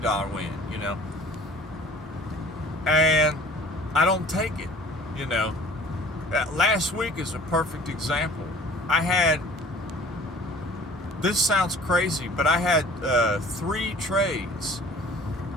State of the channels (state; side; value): normal; both; correlation 0.48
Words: win, you know. And I don't take it. You know, last week is a perfect example. This sounds crazy, but I had 3 trades.